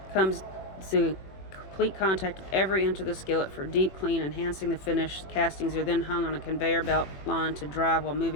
Comes to complete contact with every inch of the skillet for deep clean, enhancing the finish. Castings are then hung on a conveyor belt line to dry while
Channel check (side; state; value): right; late; 21 ms